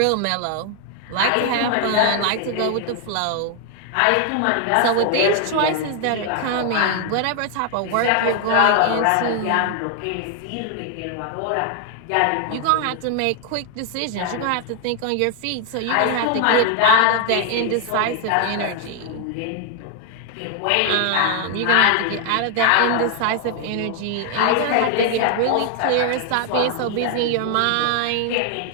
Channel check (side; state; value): both; different; correlation 0.00